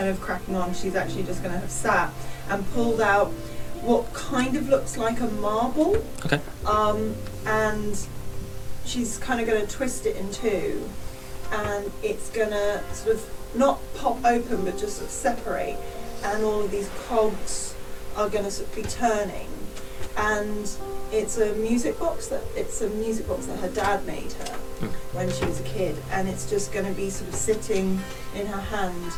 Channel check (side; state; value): both; identical; correlation 1.00